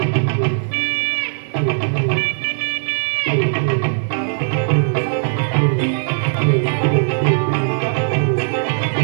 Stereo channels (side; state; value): left; silent; digital silence